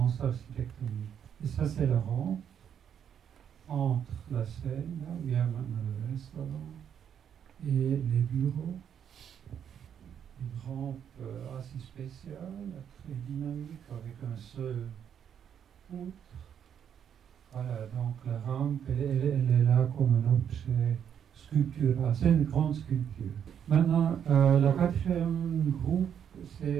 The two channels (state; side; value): quieter; left; 8.6 dB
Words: architectoniques? Et ça, c'est la rampe entre la scène, là où il y a maintenant le restaurant, et les bureaux. Une rampe assez spéciale, très dynamique, avec un seul poutre. Voilà, donc la rampe, elle est là comme un objet sculptural. C'est une grande sculpture. Maintenant, la quatrième groupe,